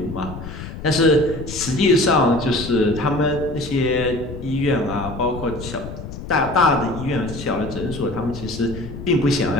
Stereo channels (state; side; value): noise; left; rumble, 10 dB below the sound